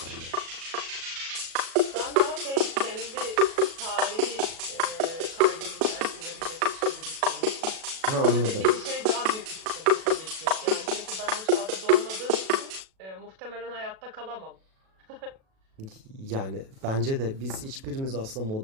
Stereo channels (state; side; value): late; left; 37 ms